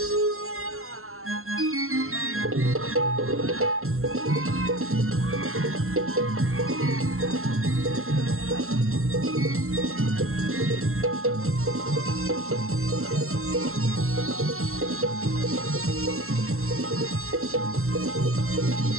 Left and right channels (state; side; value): late; left; 0.62 ms